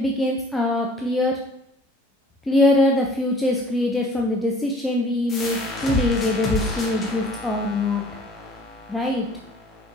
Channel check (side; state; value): both; normal; correlation 0.52